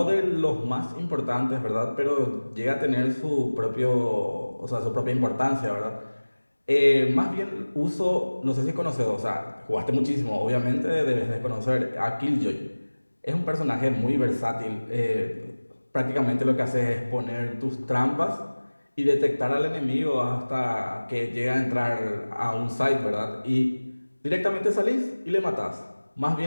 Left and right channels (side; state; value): both; inverted; correlation -1.00